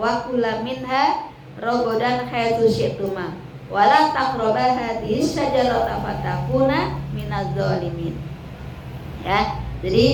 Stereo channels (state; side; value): identical; both; correlation 1.00